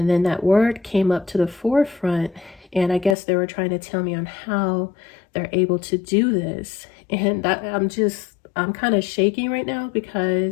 then that word came up to the forefront, and I guess they were trying to tell me on how they're able to do this. And I'm kind of shaking right now,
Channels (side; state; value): right; drops out; at 3.2 s